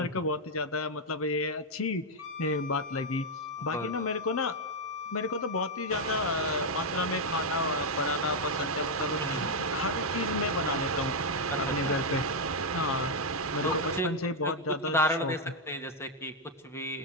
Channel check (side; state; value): both; normal; correlation 0.00